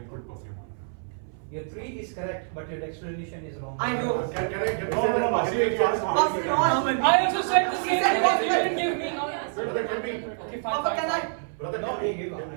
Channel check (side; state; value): left; silent; 59 dB below the other